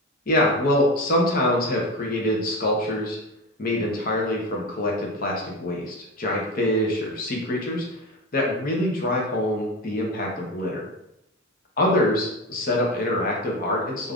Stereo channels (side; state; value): both; normal; correlation 0.23